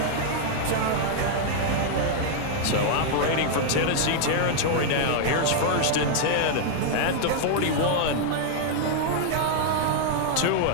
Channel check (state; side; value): different; both; correlation 0.00